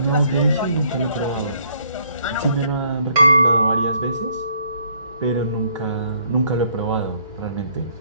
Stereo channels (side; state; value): both; inverted; correlation -0.65